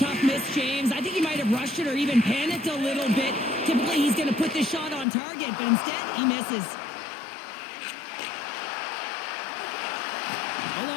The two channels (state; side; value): drops out; right; at 5.1 s